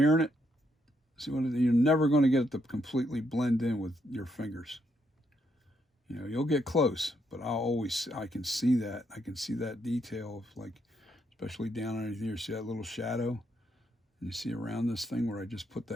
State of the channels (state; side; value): normal; both; correlation 0.76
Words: it, see what you're never going to get it to completely blend in with your fingers. You know, you'll get close, but I can see that. I can see that detail of, like, especially down underneath here. See that little shadow? And you see around this thing where I just put